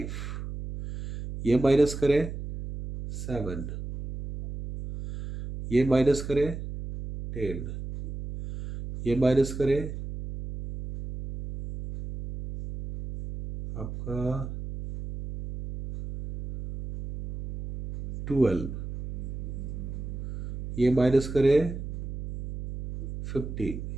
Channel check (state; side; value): noise; right; hum, 8 dB below the sound